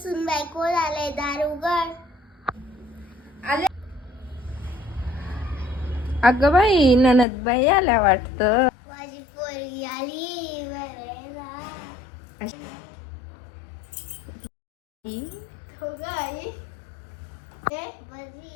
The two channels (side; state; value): right; drops out; at 7.2 s